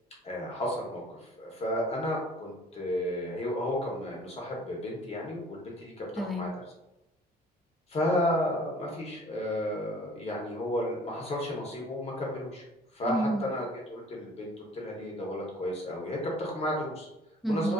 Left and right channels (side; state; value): both; normal; correlation 0.53